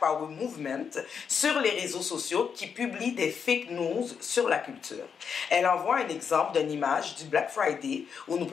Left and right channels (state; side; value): quieter; right; 6.7 dB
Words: Movement sur les réseaux sociaux qui publient des fake news sur la culture. Elle envoie un exemple d'une image du Black Friday où nous